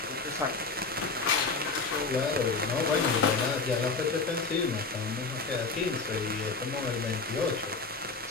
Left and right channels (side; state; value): right; quieter; 4.1 dB